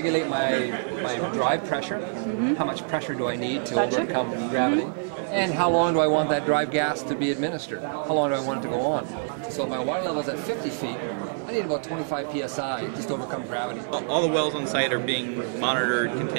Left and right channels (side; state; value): left; silent; digital silence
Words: my drive pressure, how much pressure do I need to overcome gravity, and how long do I want that drive gas to be administered, how long do I want it to go on. So if my water level's at 50 feet, I need about 25 psi just to overcome gravity. All the wells on site are being monitored